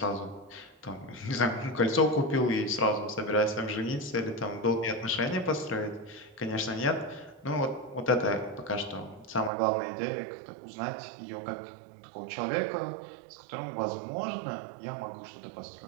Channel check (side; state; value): left; drops out; at 9.5 s